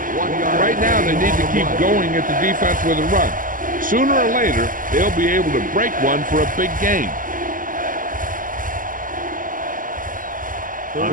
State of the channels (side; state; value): left; late; 0.39 ms